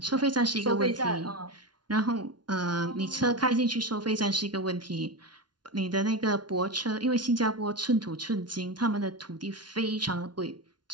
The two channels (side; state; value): left; late; 0.70 ms